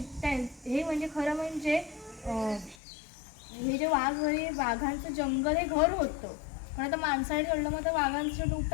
हे म्हणजे खरं म्हणजे हे जे वाघ हे वाघांचं जंगल हे घर होतं. पण आता माणसाने तोडलं मग तर वाघांचं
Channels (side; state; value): right; drops out; at 2.8 s